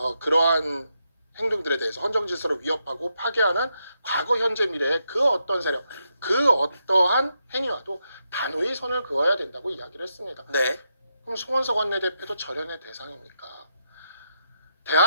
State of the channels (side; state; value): both; inverted; correlation -0.82